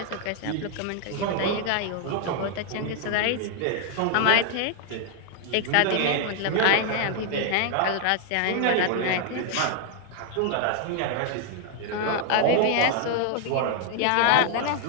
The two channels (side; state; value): both; different; correlation 0.00